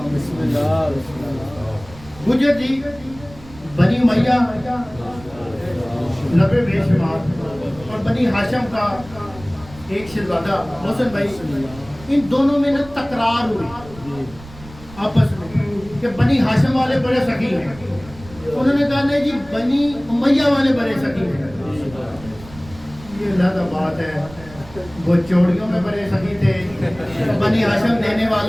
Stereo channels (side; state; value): right; noise; rumble, 19 dB below the sound